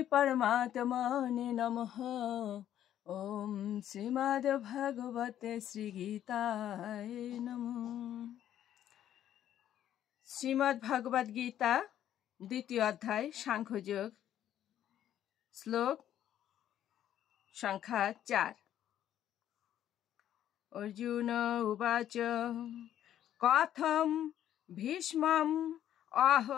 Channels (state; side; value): quieter; right; 11.1 dB